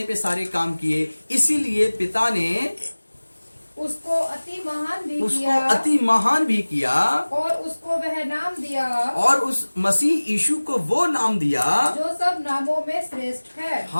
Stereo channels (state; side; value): inverted; both; correlation -1.00